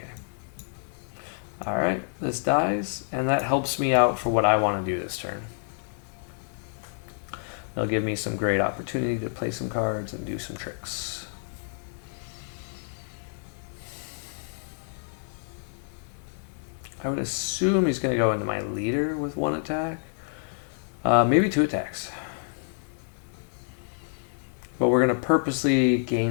Alright, this dies, and that helps me out for what I want to do this turn. They'll give me some great opportunity to play some cards and do some tricks. I would assume he's going to go into my leader with 1 attack. Maybe 2 attacks. But we're going to purposely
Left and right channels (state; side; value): silent; right; 59 dB below the other